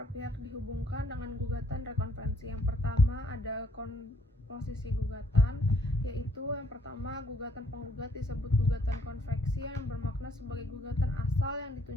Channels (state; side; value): normal; both; correlation 0.67